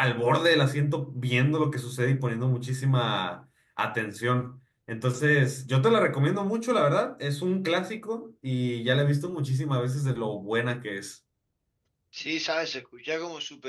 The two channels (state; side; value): identical; both; correlation 1.00